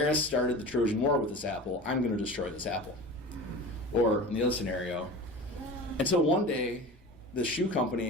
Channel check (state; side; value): normal; both; correlation 0.34